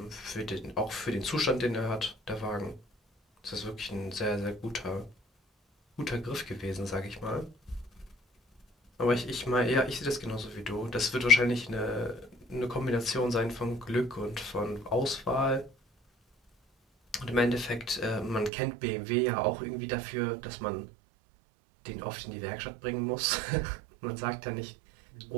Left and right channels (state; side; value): drops out; left; at 18.5 s